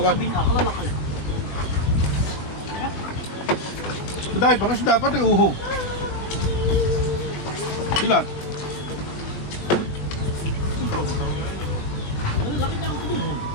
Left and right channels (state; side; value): late; right; 20 ms